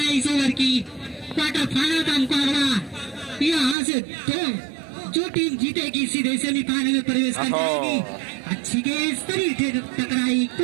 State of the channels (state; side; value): drops out; left; at 3.8 s